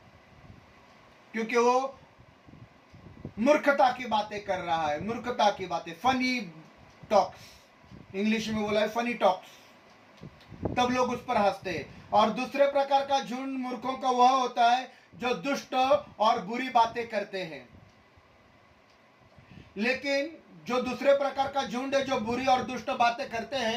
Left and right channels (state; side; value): identical; both; correlation 1.00